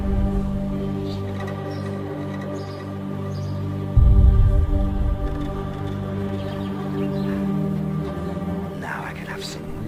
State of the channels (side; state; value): both; identical; correlation 1.00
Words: Now I can have some